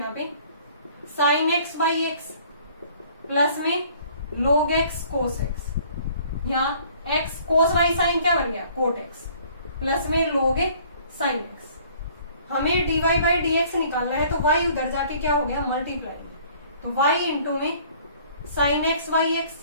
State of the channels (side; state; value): both; inverted; correlation -0.56